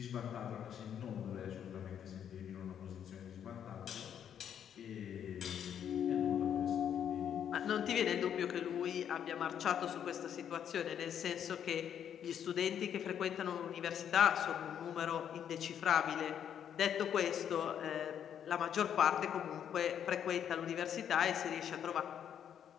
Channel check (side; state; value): right; quieter; 9.0 dB